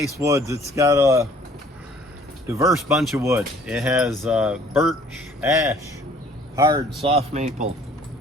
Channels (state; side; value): normal; both; correlation 0.56